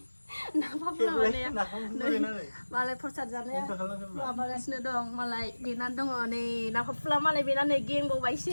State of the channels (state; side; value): inverted; both; correlation -1.00